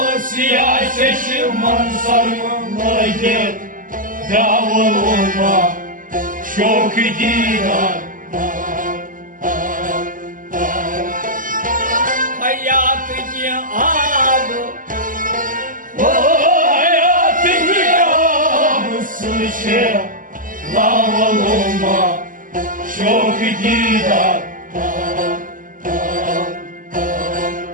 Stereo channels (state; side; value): late; left; 0.39 ms